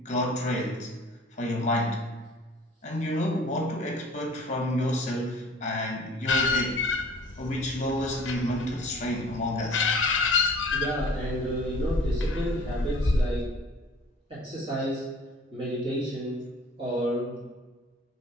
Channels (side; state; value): both; normal; correlation 0.48